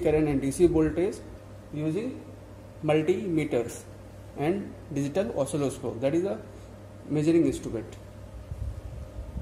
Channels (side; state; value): both; identical; correlation 1.00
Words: current and DC voltage using multimeters and digital oscilloscope, that is a measuring instrument.